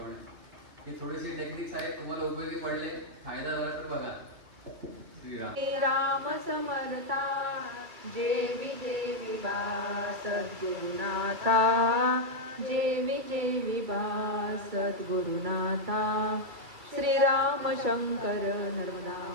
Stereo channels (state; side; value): late; left; 2.3 ms